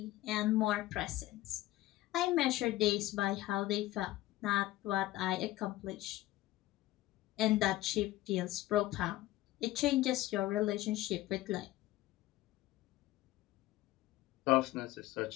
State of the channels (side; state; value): right; quieter; 16.4 dB